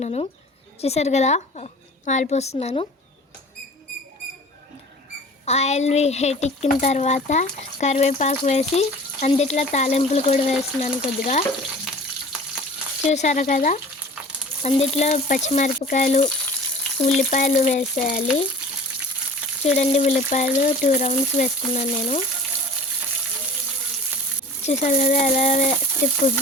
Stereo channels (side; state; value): both; normal; correlation 0.43